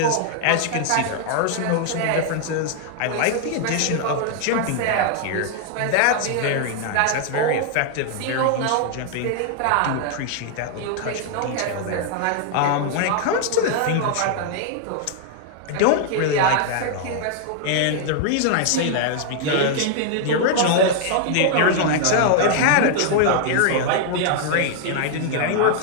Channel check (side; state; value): both; different; correlation 0.00